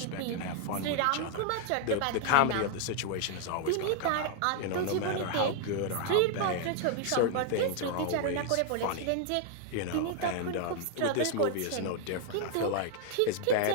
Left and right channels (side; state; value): both; different; correlation 0.00